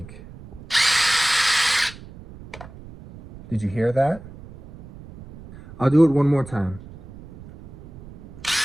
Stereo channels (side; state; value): right; noise; rumble, 18 dB below the sound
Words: Did you hear that? I'll do it one more time.